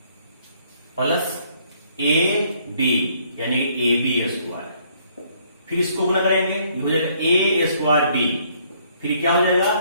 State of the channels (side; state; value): both; inverted; correlation -0.65